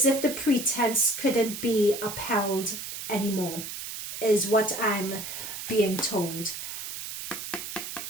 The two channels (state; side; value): noise; right; hiss, 8 dB below the sound